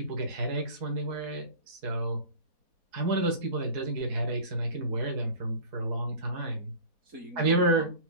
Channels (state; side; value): late; left; 4.1 ms